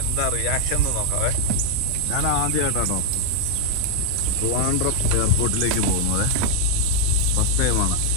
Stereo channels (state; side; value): different; both; correlation 0.00